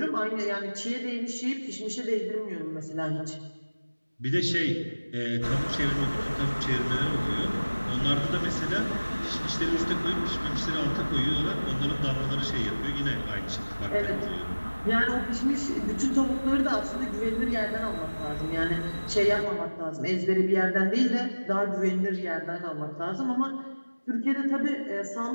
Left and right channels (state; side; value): inverted; both; correlation -1.00